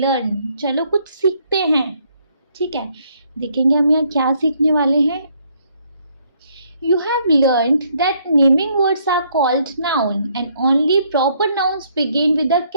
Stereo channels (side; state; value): both; inverted; correlation -0.69